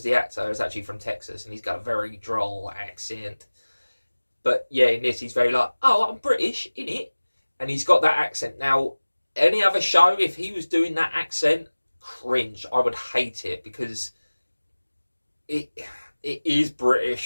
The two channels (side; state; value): both; inverted; correlation -1.00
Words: the actor, is actually from Texas, and he's got a very droll accent. But yeah, in this, he's very like, oh, I'm British, innit? And he's got that accent. Now, any other show, if he was doing that accent, cringe. I would hate it because it is